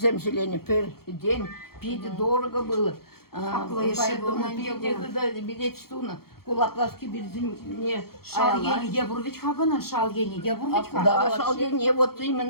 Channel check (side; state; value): right; late; 0.94 ms